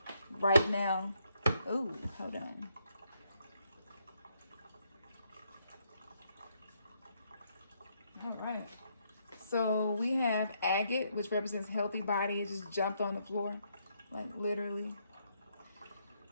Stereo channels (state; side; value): inverted; both; correlation -0.74